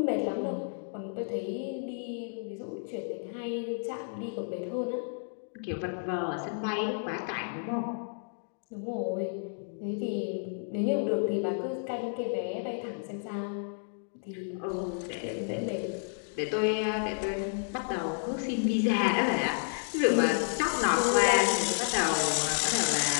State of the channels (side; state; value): right; silent; digital silence